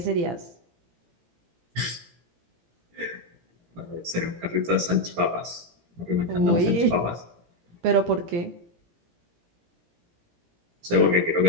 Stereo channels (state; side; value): late; left; 17 ms